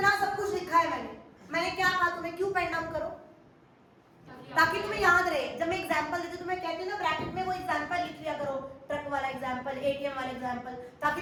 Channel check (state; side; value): identical; both; correlation 1.00